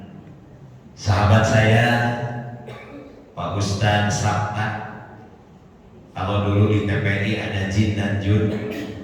sahabat saya Pak Ustadz Sabta. Kalau dulu di TPI ada Jin dan Jun,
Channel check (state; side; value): identical; both; correlation 1.00